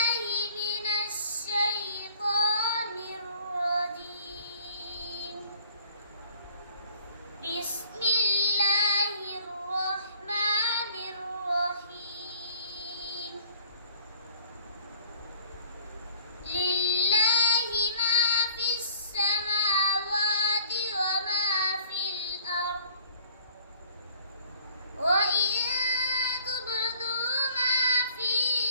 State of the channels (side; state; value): both; inverted; correlation -0.51